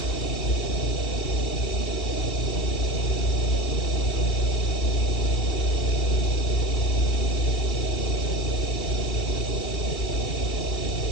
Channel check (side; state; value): right; late; 2.8 ms